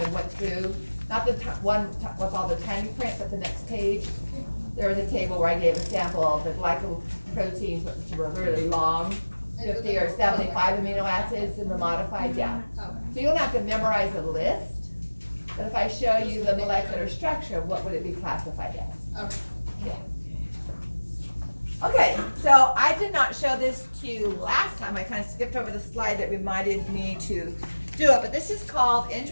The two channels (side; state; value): both; inverted; correlation -1.00